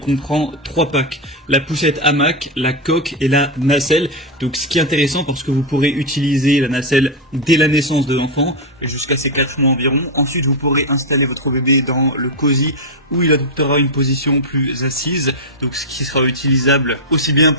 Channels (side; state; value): both; normal; correlation 0.03